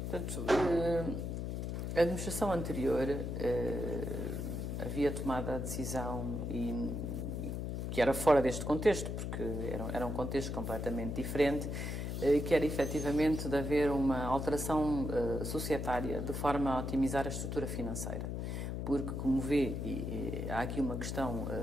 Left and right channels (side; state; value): left; noise; hum, 3 dB below the sound